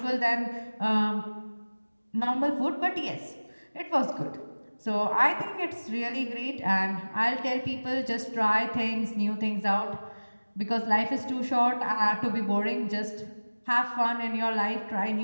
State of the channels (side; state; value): both; inverted; correlation -1.00